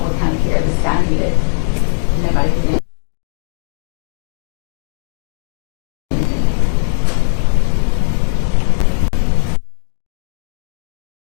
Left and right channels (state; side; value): silent; right; 58 dB below the other